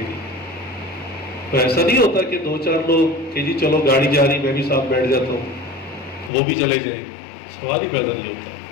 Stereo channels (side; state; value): right; drops out; at 6.3 s